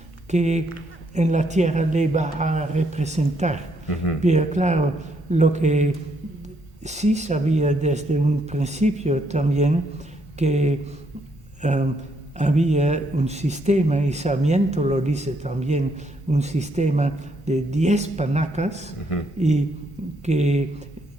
que en la tierra le va a representar. Pero claro, lo que sí sabía desde un principio también, que había un sistema, y Sarmiento lo dice también, un sistema de 10 panacas, y que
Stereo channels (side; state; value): both; normal; correlation 0.73